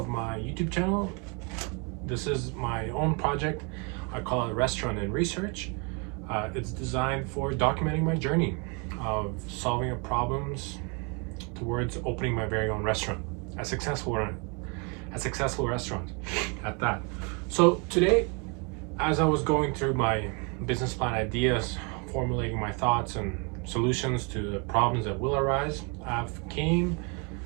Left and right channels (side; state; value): left; quieter; 33.3 dB